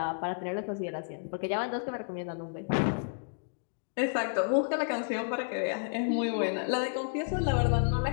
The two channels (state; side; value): silent; right; digital silence